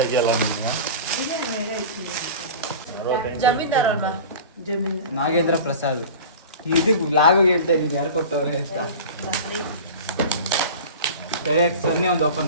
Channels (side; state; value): both; inverted; correlation -0.35